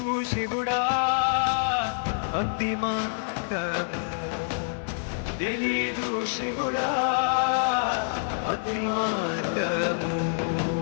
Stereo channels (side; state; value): right; silent; 60 dB below the other